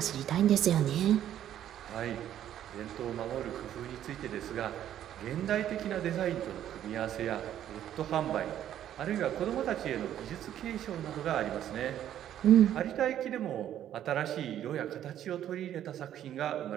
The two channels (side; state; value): left; quieter; 11.1 dB